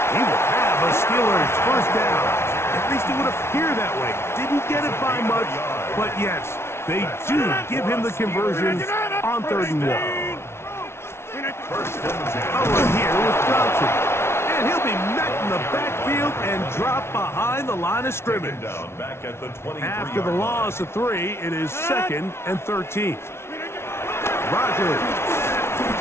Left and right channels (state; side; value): late; right; 0.12 ms